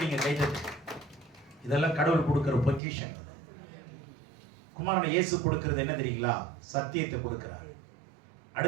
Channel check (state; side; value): drops out; left; at 2.8 s